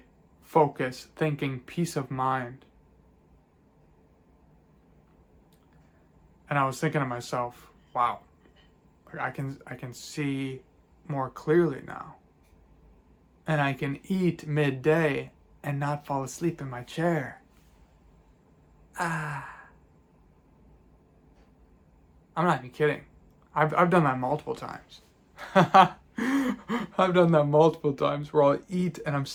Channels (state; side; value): identical; both; correlation 1.00